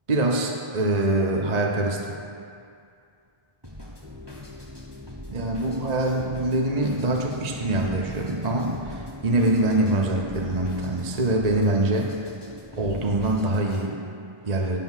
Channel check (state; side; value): late; left; 1.8 ms